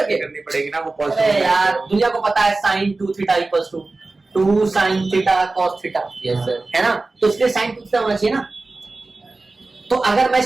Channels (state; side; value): quieter; left; 3.4 dB